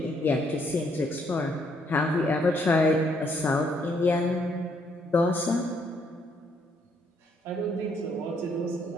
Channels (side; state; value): both; normal; correlation 0.70